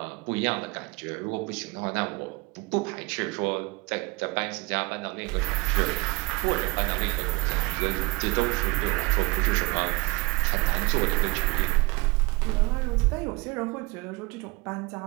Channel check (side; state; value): left; quieter; 24.5 dB